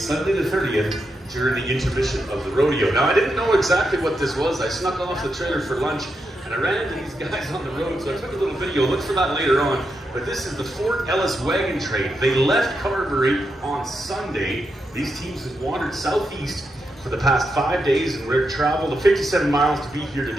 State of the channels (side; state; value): both; normal; correlation 0.85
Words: the 30th during the intermission of the rodeo. Now, I didn't know exactly what this was. I snuck off the trailer for lunch, and I ran into these guys on the road, so I took a little video. Look for that later on. But this is the Fort Ellis Wagon Train. They left Carberry on Sunday. These teams have wandered southeast for the past 5 days, and we're traveled the 57 miles to be here